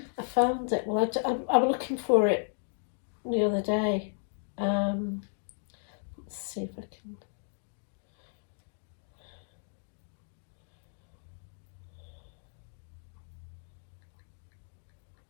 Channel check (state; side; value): silent; right; digital silence